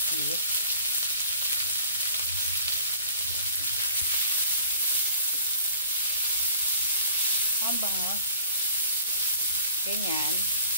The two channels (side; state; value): both; inverted; correlation -0.51